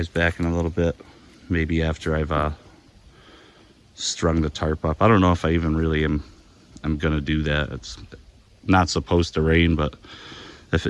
back in a little bit, maybe after I've strung the tarp up. I don't know if I even really am gonna do that. It's not supposed to rain, but if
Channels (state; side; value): identical; both; correlation 1.00